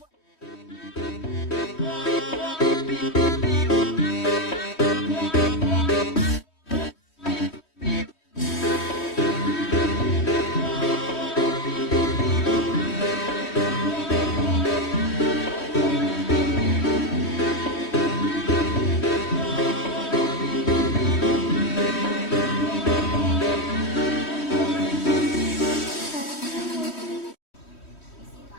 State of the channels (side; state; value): right; late; 3.1 ms